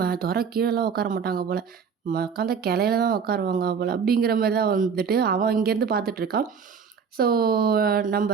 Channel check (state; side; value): quieter; left; 6.4 dB